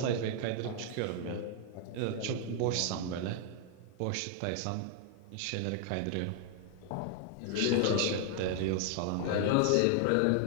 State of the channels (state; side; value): different; both; correlation 0.00